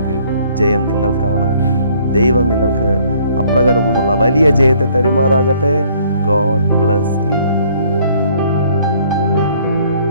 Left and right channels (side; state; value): both; inverted; correlation -0.61